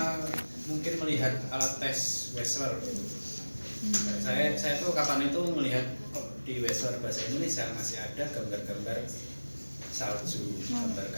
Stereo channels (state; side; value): inverted; both; correlation -1.00